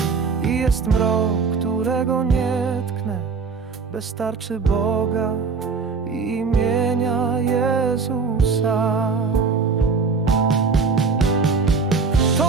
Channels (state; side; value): quieter; left; 4.9 dB